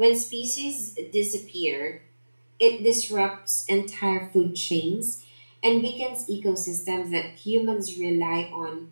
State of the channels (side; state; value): both; inverted; correlation -1.00